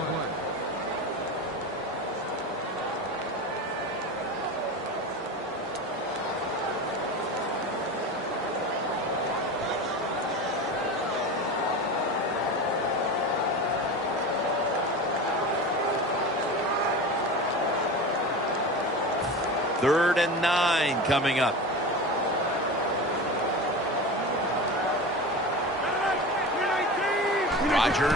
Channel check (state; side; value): normal; both; correlation 0.28